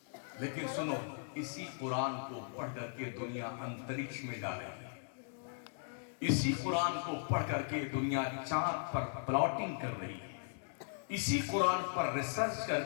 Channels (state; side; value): silent; right; digital silence